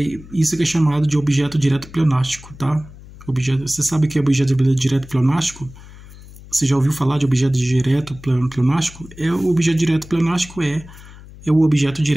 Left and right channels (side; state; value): left; noise; hum, 19 dB below the sound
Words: isso que é chamado de objeto direto pleonástico, tá? Você sabe o que é objeto direto pleonástico? Você já ouviu falar de objeto direto pleonástico? O objeto direto pleonástico é o objeto